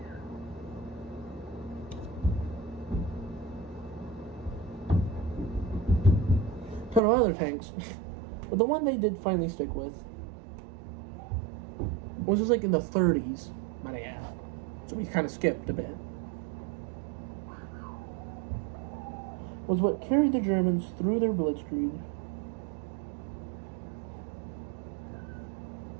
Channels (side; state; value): left; drops out; at 7.0 s